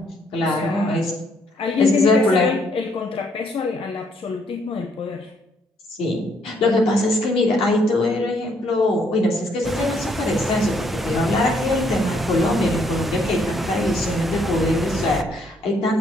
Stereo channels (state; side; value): normal; both; correlation 0.70